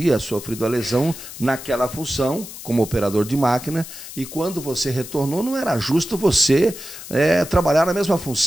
sofrido a lesão naquela função, como operador de máquina, e quando você retornou, não era justo você trabalhar na mesma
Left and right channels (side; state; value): left; noise; hiss, 13 dB below the sound